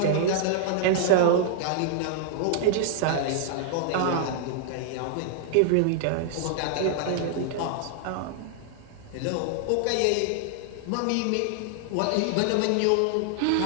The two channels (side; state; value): both; different; correlation -0.01